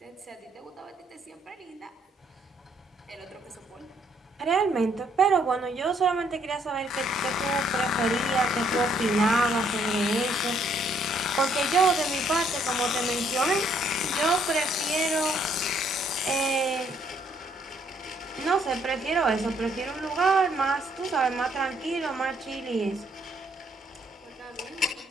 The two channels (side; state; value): both; normal; correlation 0.68